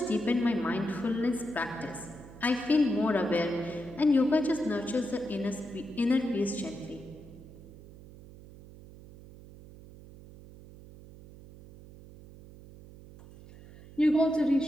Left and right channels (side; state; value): right; noise; hum, 19 dB below the sound